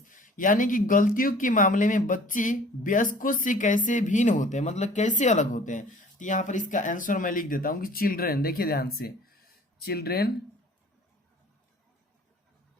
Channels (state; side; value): normal; both; correlation 0.50